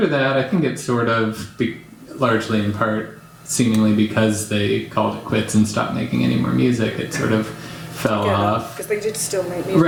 that, I think it's sort of largely in part seemingly because they called it quits and stopped making any more music. It sort of fell off. Because they did still make music.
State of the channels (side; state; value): both; identical; correlation 1.00